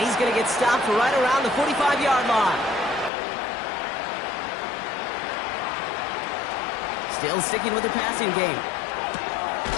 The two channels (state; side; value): drops out; right; at 3.1 s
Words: going to get stopped right around the 45-yard line. Still sticking with the passing game.